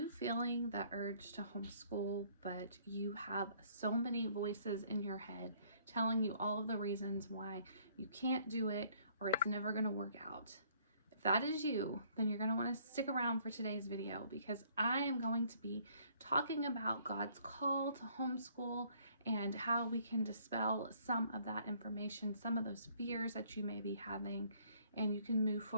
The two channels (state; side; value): inverted; both; correlation -0.62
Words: feeling the urge to homeschool, but you have so many voices in your head telling you all of the reasons why you can't do it or it's never going to work out? If that is you, then you're going to want to stick around for today's video because I am going to be talking about God's call to homeschool and how we can dispel some of that information, some of those fears that you may be having, and you can move